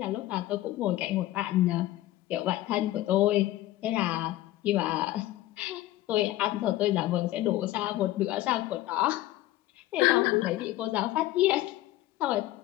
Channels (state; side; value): quieter; right; 15.7 dB